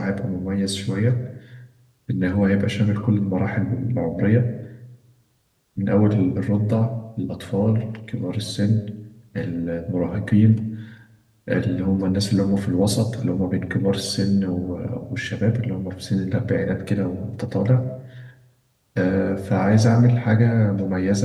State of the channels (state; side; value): identical; both; correlation 1.00